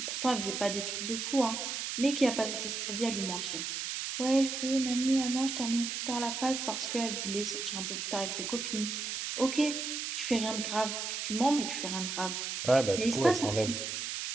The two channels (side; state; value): right; noise; hiss, 3 dB below the sound